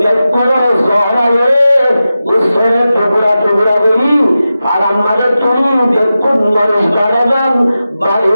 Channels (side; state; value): both; inverted; correlation -0.93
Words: Zoraye, Gusore Tugura Beri, Alam Madatuni, Bekun Maris Baradan,